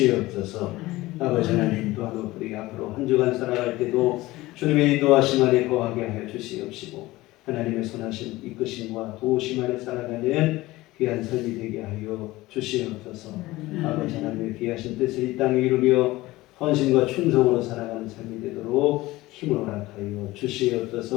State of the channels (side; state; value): right; quieter; 18.7 dB